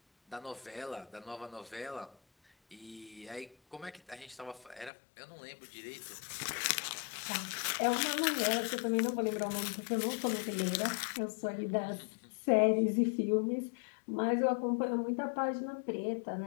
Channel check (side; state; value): right; drops out; at 4.9 s